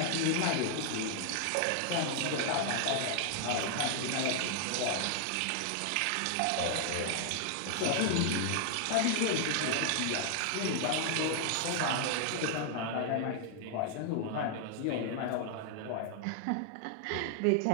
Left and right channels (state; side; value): different; both; correlation 0.00